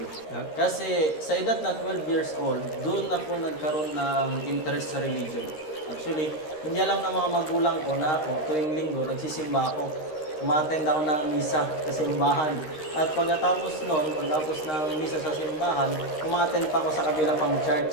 Kasi sa edad na 12 years old, doon ako nagkaroon ng interest sa religion. Actually, hindi alam ng mga magulang ko na ako, tuwing linggo, nagsisimba ako. Umattend ako ng misa sa simbahan. At pagkatapos ng misa sa simbahan, umattend pa ako sa kabila pang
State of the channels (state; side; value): late; right; 13 ms